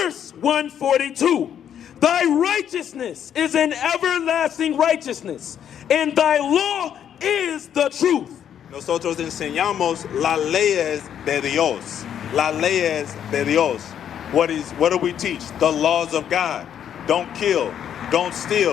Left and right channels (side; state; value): right; quieter; 9.3 dB